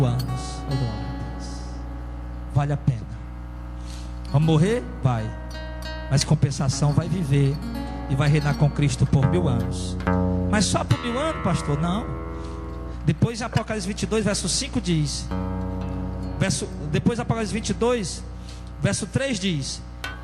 anos. Oh, glória a Deus. Vale a pena. Vamos morrer? Vai. Mas compensação, vai viver e vai reinar com Cristo por 1000 anos. Mas só por 1000 anos, pastor? Não. Depois em Apocalipse 22 verso 5 diz, depois Apocalipse 22 verso 3 diz:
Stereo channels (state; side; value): identical; both; correlation 1.00